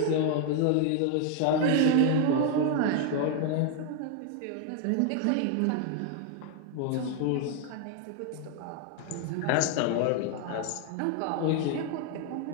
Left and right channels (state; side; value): different; both; correlation 0.00